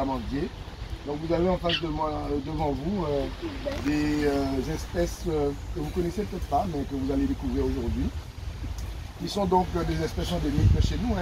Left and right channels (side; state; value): both; identical; correlation 1.00